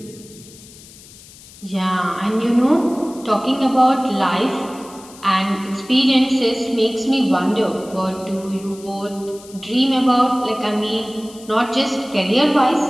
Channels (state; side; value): noise; left; hiss, 21 dB below the sound